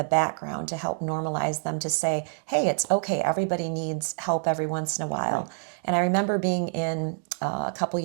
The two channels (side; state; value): left; silent; 59 dB below the other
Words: background to help normalize them, to say, hey, it's okay, everybody needs help every once in a while. Right. And I remember being in a couple